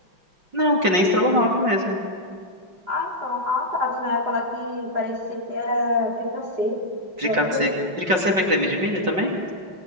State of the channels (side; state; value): left; late; 5.4 ms